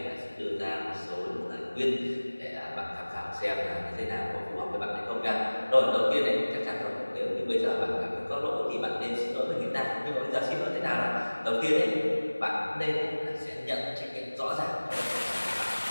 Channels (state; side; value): inverted; both; correlation -1.00